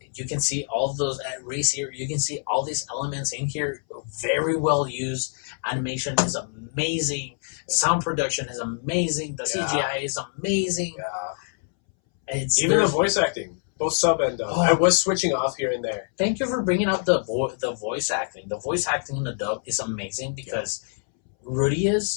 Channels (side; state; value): right; silent; 62 dB below the other